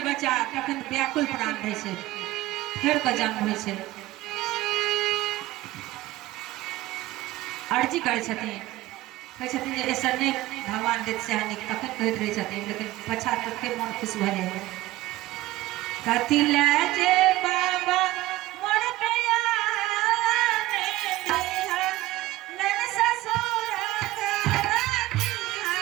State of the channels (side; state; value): left; quieter; 17.2 dB